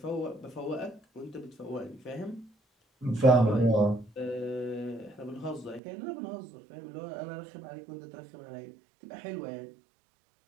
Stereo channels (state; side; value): drops out; left; at 5.8 s